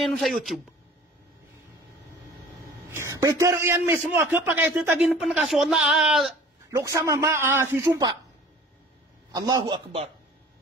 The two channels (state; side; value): normal; both; correlation 0.47